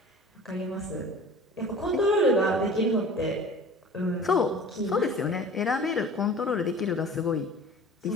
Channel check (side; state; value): both; normal; correlation 0.42